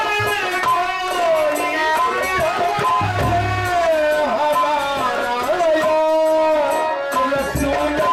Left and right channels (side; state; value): both; identical; correlation 1.00